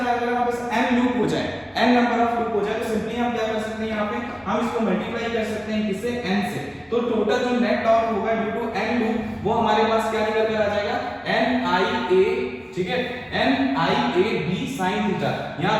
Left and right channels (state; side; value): identical; both; correlation 1.00